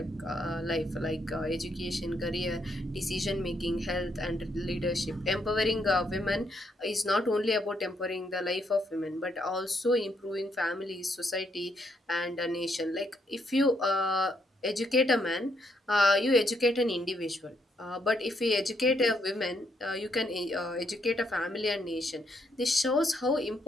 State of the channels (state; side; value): normal; both; correlation 0.75